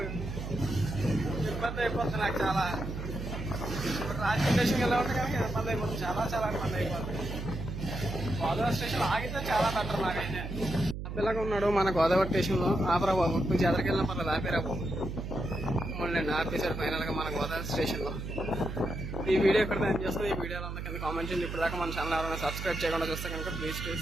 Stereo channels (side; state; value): right; noise; hum, 6 dB below the sound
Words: ఇబ్బంది అయిపోతుంది నాకు చాలా. ఇప్పుడు రాజకీయ స్టేషన్కి వెళ్ళి ఉంటే కనుక ఇబ్బంది అయిపోతుంది. చాలా చాలా ఇబ్బంది అయిపోతుంది. గోదావరి స్టేషన్ ఆగితే చాలా బెటర్ నాకైతే. ఆపేలాగా ఉన్నాడు మన గోదావరి స్టేషన్లో. ఆపరా బాబు, కొంచెం ఎదరికి వెళ్ళిన పర్లేదు, ఆపేరా బాబు. మళ్ళీ ఆపేశారు ఫైనల్గా మన గోదావరి స్టేషన్లో. ఈ వీడియో ఎక్కడ నేను చేస్తుంది. ఈ వీడియోలో అందరికీ కింద కామెంట్ చేయండి. ఇప్పుడు దాకా మన ఛానల్ ఎవరైనా సబ్స్క్రైబ్ చేయకుండా చూస్తే కనుక please